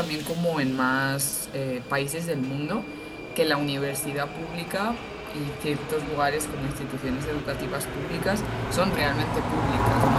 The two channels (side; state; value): both; identical; correlation 1.00